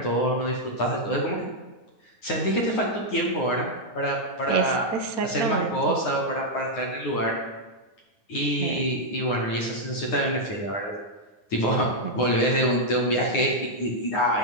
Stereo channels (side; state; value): right; late; 9.6 ms